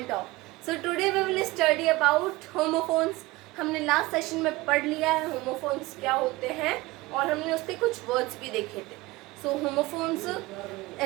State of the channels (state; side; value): quieter; left; 20.4 dB